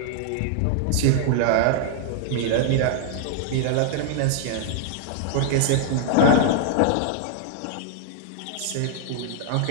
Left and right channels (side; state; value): both; different; correlation -0.01